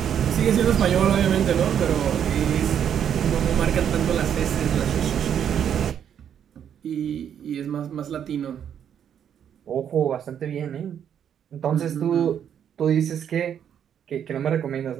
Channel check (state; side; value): quieter; left; 8.9 dB